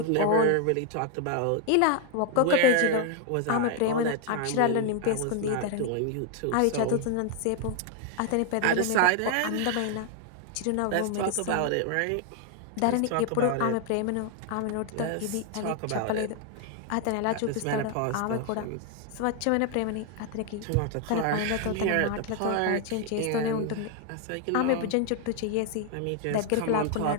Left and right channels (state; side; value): different; both; correlation 0.00